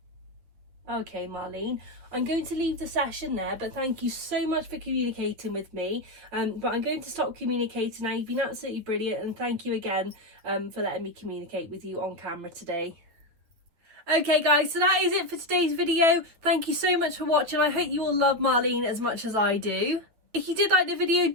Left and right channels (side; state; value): left; late; 9.2 ms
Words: better. Okay, Marlene. I'm going to leave the session there, but thank you so much for communicating with me. But I'm going to stop communicating now. You've been absolutely brilliant, and thank you again for letting me communicate with you on camera today. Okay guys, so that is it for today's video. Thank you so much for watching. I hope you all love Marlene as much as I do. If you did like the video,